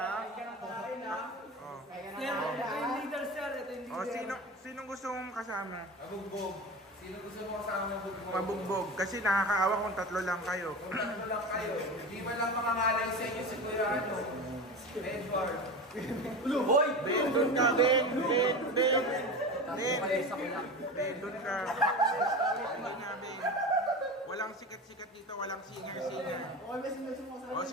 Sir, ito yung leader, sir. Ito yung leader. Sinong gusto mong kasama? Mabugbog. Sino gusto mo kasama mabugbog? Mabugbog. Kasi nakakaawa kung tatlo lang kayo. Tatlo lang kayo. Hindi man lang mangangalay sa inyo si Kuya Edward. Hoy! Ben, doon ka, Ben, doon ka. Hindi nga, Ben. Walang sikat-sikat dito, walang singer-singer.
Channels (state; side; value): normal; both; correlation 0.28